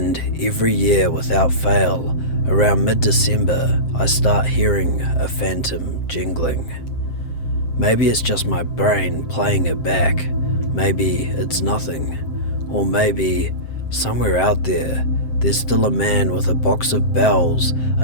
every year without fail, around mid-December, I start hearing a phantom jingling. Maybe it's just my brain playing it back. Maybe it's nothing. Or maybe somewhere out there, there's still a man with a box of bells,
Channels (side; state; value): right; late; 7.7 ms